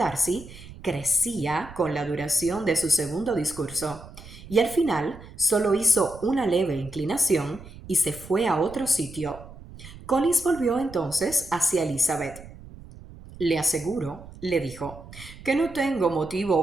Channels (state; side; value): noise; right; rumble, 17 dB below the sound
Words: crecía con la duración de su segundo discurso, y al final solo hizo una leve inclinación y se fue a otro sitio. Collins volvió entonces hacia Elizabeth. Le aseguro, le dijo, que no tengo